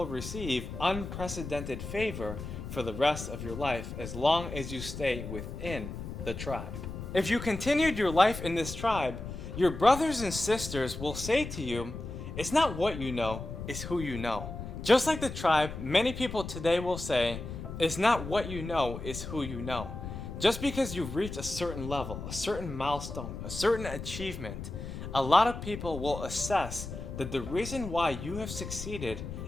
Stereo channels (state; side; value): noise; left; rumble, 8 dB below the sound